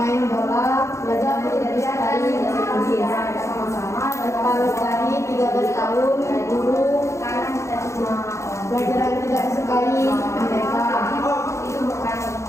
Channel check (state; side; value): late; right; 0.14 ms